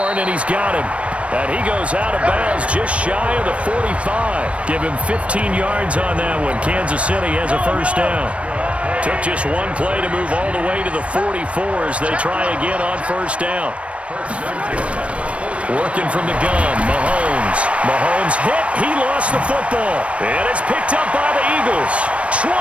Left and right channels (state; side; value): late; left; 0.062 ms